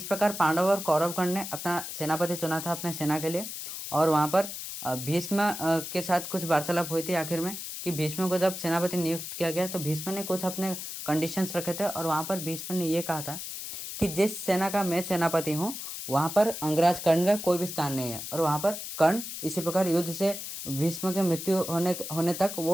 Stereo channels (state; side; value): noise; left; hiss, 7 dB below the sound